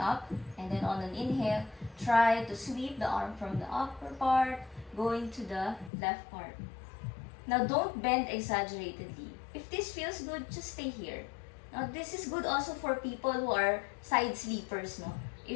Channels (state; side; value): drops out; right; at 5.9 s